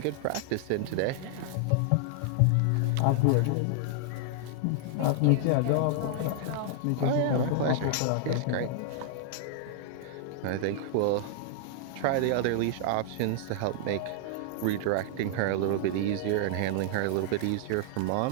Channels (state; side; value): different; both; correlation -0.01